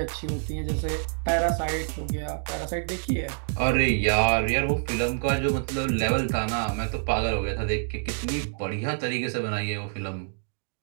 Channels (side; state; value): left; silent; digital silence